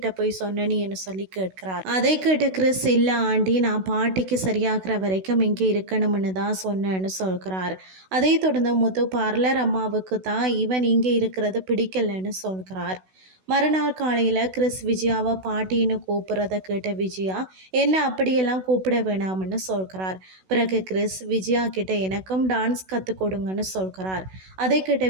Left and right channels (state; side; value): late; left; 16 ms